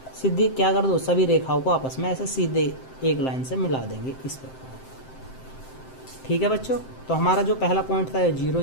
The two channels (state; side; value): late; right; 7.7 ms